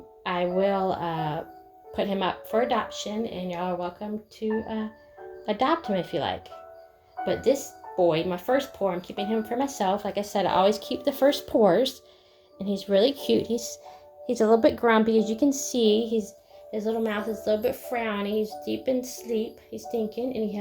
I will put him up for adoption, and y'all are welcome to adopt him if you like. But this boy, my first pour, I'm keeping him for myself. Like I said, I always keep the first pours, and he's really cute. He's a little bit grumpy, as you can see. His little mouth is a little bit frowny. He's deep in sleep. He's thinking, and he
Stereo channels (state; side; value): identical; both; correlation 1.00